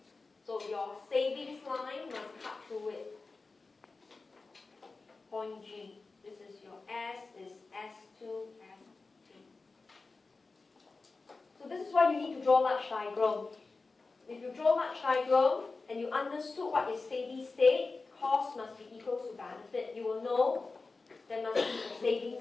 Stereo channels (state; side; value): quieter; right; 3.9 dB